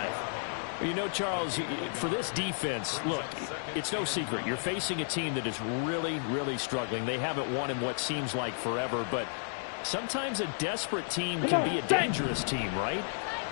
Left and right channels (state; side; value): silent; right; digital silence